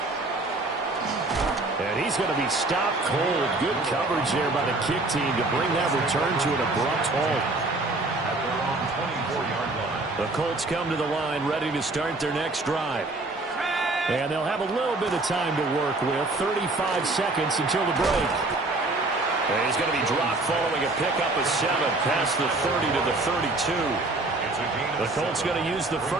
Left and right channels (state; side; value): quieter; left; 3.0 dB